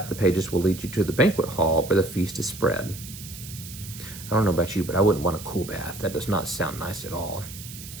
the pages will lead you to the banquet hall where the feast is spread." I don't know about you, but I wouldn't want a cool bath. That does not sound nice at all.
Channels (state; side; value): noise; right; hiss, 13 dB below the sound